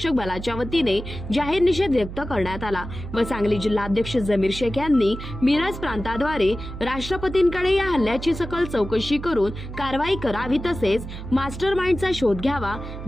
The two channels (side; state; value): right; noise; hum, 10 dB below the sound